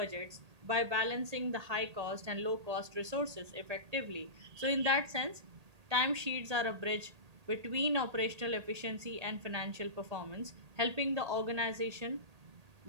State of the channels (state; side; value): late; left; 1.8 ms